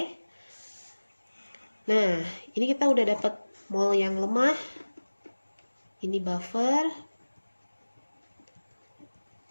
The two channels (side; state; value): both; inverted; correlation -1.00